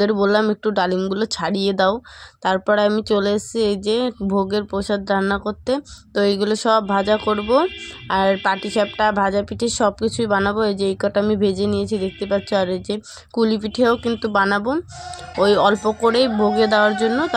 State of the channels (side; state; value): both; identical; correlation 1.00